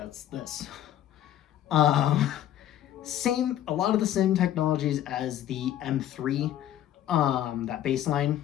this. A lot of the same technologies as the M3, that baseline,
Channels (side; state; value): right; quieter; 11.8 dB